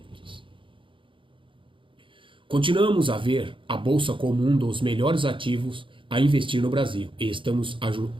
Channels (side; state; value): left; late; 0.25 ms